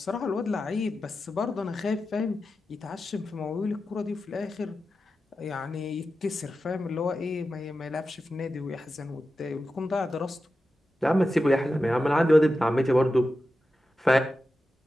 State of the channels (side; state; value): both; normal; correlation 0.92